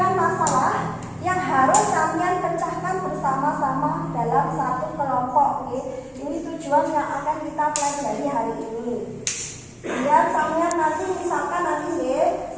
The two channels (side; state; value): both; identical; correlation 1.00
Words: masalah yang harus kalian pecahkan bersama-sama dalam satu kelompok. Ini tujuan yang akan kita pelajari hari ini. Biar sampean nanti misalkan